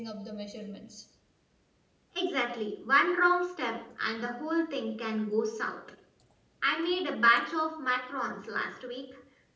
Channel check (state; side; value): identical; both; correlation 1.00